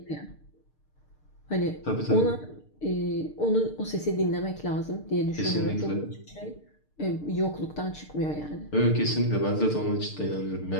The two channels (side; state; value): right; late; 6.6 ms